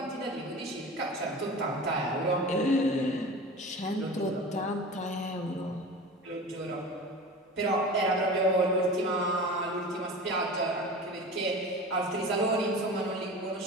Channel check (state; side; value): normal; both; correlation 0.34